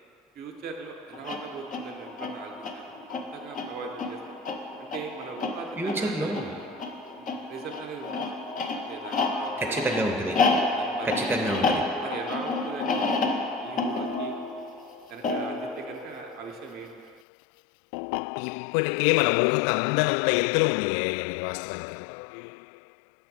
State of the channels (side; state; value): right; drops out; at 17.2 s